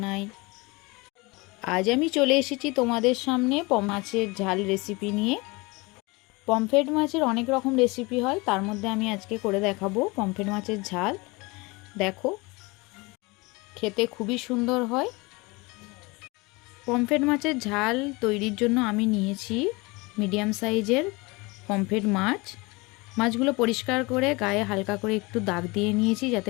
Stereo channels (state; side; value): quieter; right; 25.2 dB